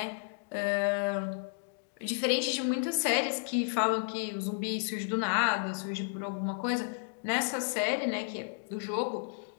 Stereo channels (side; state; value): right; silent; digital silence